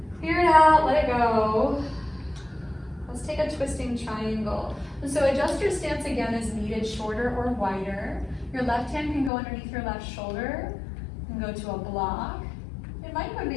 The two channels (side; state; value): right; drops out; at 9.3 s